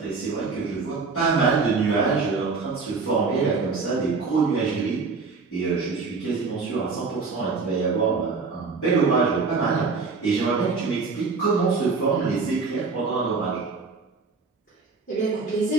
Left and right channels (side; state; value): left; quieter; 4.5 dB